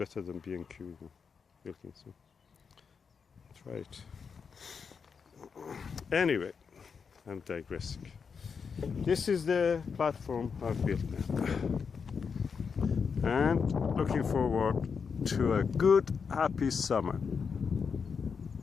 than B&Q. Wilkinson. Try it. Anyway, I'm digressing. This is the platform I've built now. And looking forward to a good, happy summer.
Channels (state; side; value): quieter; right; 5.9 dB